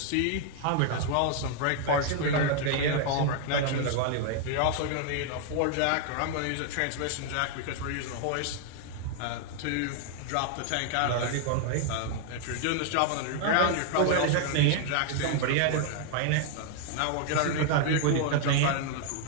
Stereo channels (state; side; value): different; both; correlation 0.00